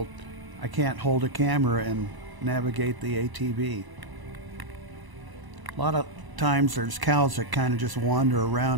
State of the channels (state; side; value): late; left; 1.0 ms